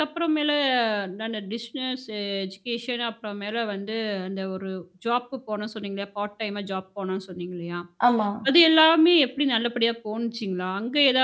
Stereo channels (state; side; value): identical; both; correlation 1.00